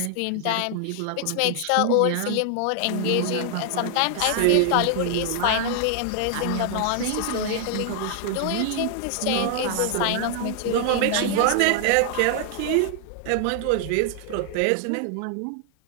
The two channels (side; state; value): both; different; correlation 0.00